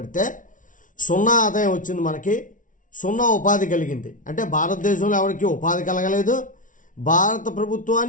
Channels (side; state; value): right; late; 0.38 ms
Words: 0 ఆదాయం వచ్చింది. మనకి 0 ఉపాధి కలిగింది. అంటే భారతదేశంలో ఎవరికి ఉపాధి కలగలేదు. భారత